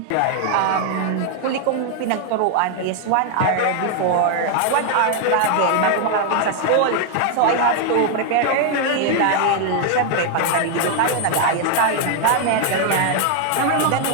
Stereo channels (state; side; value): different; both; correlation 0.00